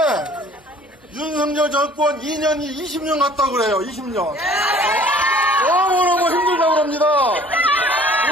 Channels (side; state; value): both; normal; correlation 0.52